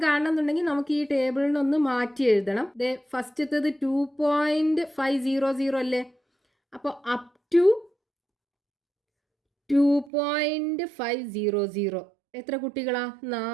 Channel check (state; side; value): drops out; left; at 10.1 s